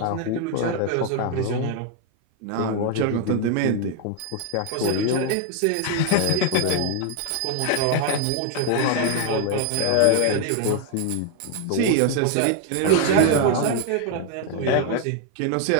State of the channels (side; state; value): both; different; correlation 0.00